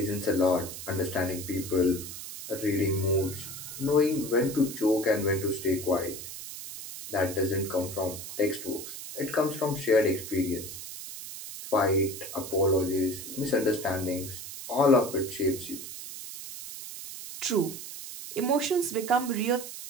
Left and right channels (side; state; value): right; noise; hiss, 10 dB below the sound